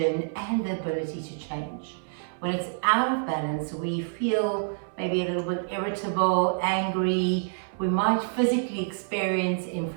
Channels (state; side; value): silent; left; 60 dB below the other